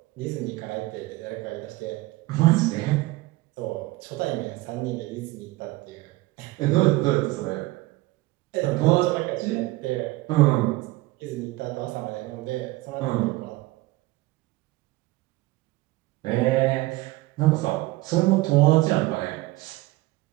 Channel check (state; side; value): quieter; left; 19.6 dB